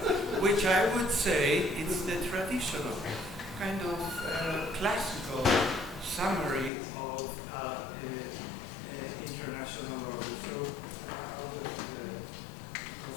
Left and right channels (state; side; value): drops out; right; at 6.7 s